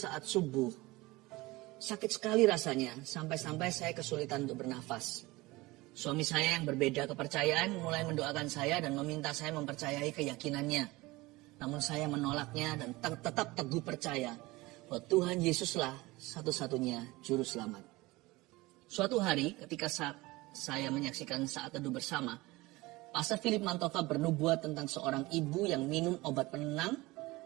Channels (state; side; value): quieter; left; 20.9 dB